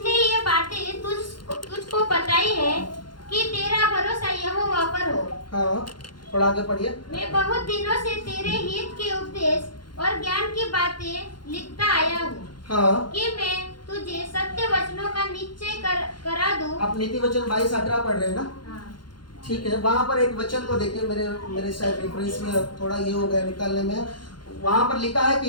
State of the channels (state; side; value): late; right; 0.71 ms